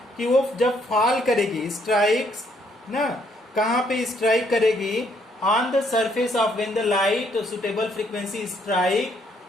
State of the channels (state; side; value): normal; both; correlation 0.69